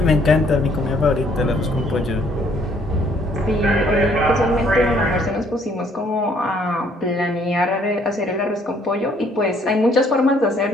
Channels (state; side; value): normal; both; correlation 0.64